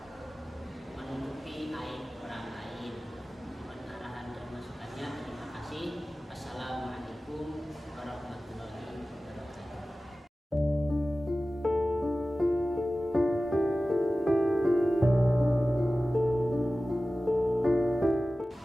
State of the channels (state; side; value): normal; both; correlation 0.96